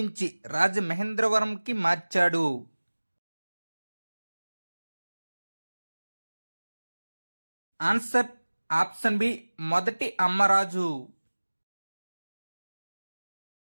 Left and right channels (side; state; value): both; inverted; correlation -1.00